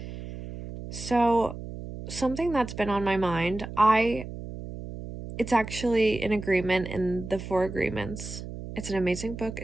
So, something that's been on my mind, it's actually an agreement in the Four Agreements. It's an amazing book.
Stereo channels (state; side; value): noise; right; hum, 10 dB below the sound